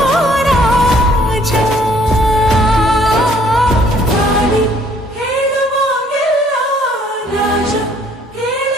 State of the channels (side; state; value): both; normal; correlation 0.61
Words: ರಾಜ, ಹೇಳುವಾಗೆಲ್ಲ ರಾಜ